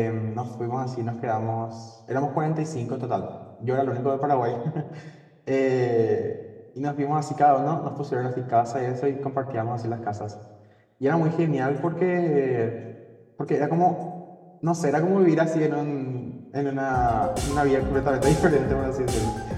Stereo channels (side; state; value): both; identical; correlation 1.00